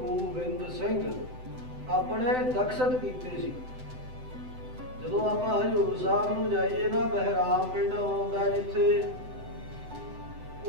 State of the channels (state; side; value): late; left; 7.9 ms